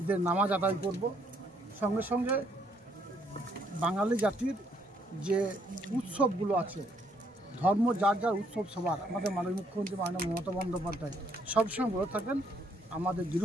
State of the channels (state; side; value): normal; both; correlation 0.69